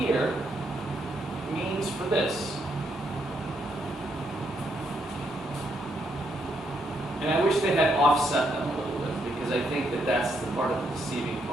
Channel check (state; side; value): normal; both; correlation 0.76